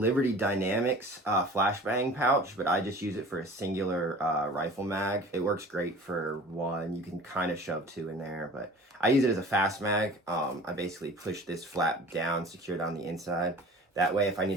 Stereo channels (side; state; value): both; normal; correlation 0.43